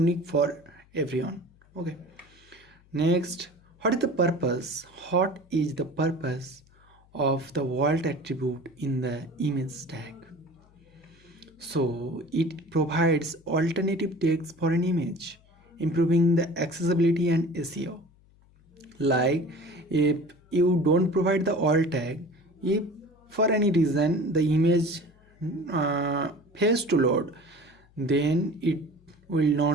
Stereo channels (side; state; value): left; noise; hum, 29 dB below the sound